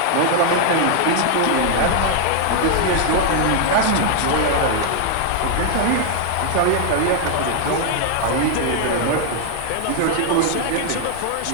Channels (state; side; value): different; both; correlation 0.00